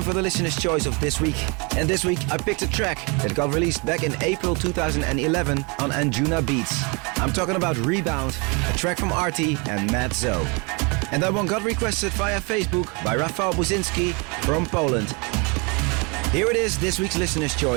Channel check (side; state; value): left; quieter; 31.1 dB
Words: for the listener's choice of this week. And this week I picked a track that got released back in April 2011 on Anjunabeats. I'm talking about Rebound, a track from Arty and Matt Zo. And that one got requested via Facebook by Rafał Buzinski from Poland. Here it is, this week's listener's